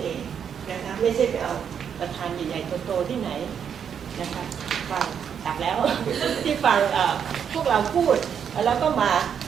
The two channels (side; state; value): left; quieter; 7.8 dB